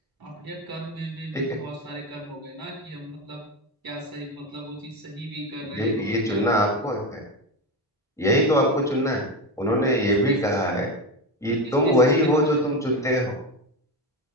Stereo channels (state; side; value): normal; both; correlation 0.16